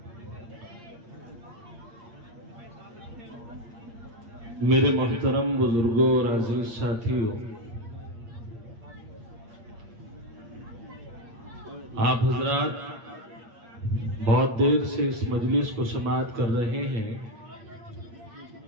میرے محترم بزرگوں اور عزیز ساتھیوں آپ حضرات بہت دیر سے اس مجلس کو سماعت کر رہے ہیں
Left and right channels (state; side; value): late; left; 8.6 ms